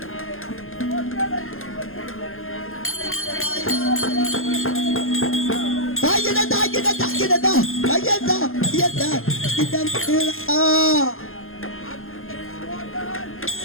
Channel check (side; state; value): right; late; 0.61 ms